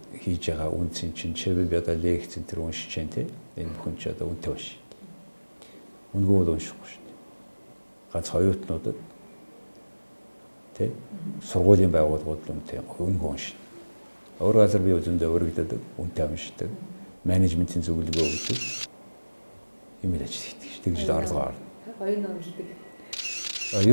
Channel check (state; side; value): inverted; both; correlation -1.00